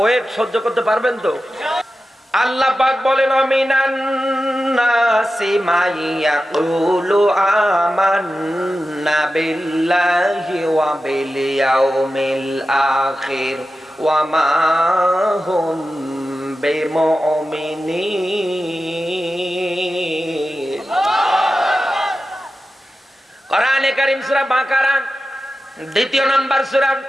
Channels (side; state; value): both; normal; correlation 0.93